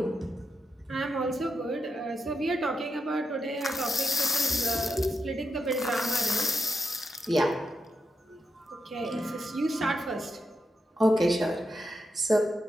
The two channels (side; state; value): both; normal; correlation 0.85